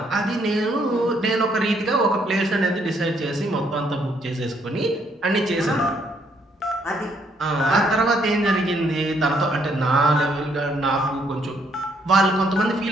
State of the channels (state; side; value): normal; both; correlation 0.70